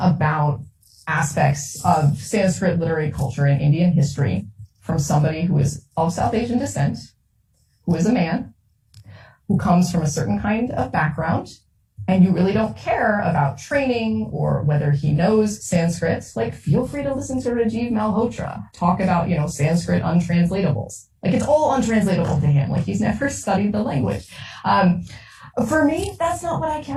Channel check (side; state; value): both; identical; correlation 1.00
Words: aspects of Sanskrit literary culture and Indian history from somebody who is of South Asian descent, who is a man, who comes from a certain kind of background, and you really don't care about training or whether he knows Sanskrit, feel free to listen to Rajiv Malhotra talk about, Sanskrit untranslatables. It's all untranslatable to him. He's never studied the language. For me, that's not what I